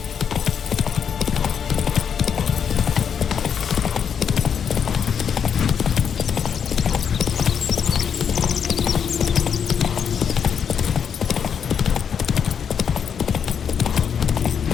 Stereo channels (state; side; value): quieter; right; 7.5 dB